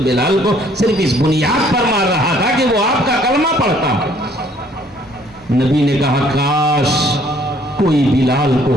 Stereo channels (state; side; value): normal; both; correlation 0.61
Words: بلال کو صرف اس بنیاد پر مار رہا تھا کہ وہ آپ کا کلمہ پڑھتا ہے۔ نبی نے کہا کاش کوئی بلال کو